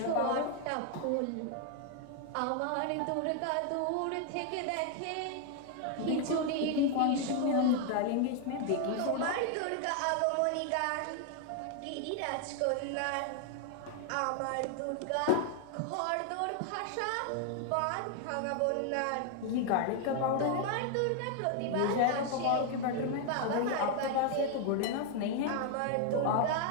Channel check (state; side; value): different; both; correlation 0.00